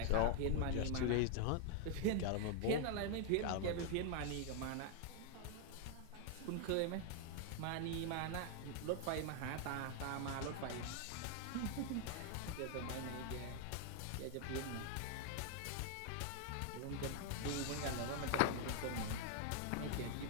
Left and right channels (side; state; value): both; different; correlation 0.00